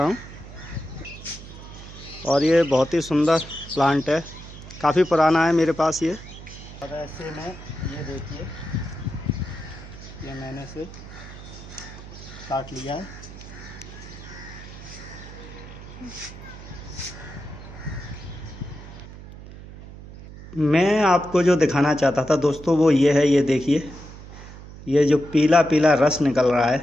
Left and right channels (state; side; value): noise; right; hum, 15 dB below the sound